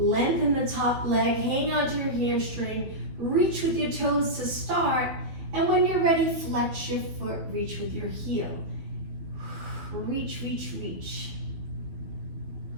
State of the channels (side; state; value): left; late; 12 ms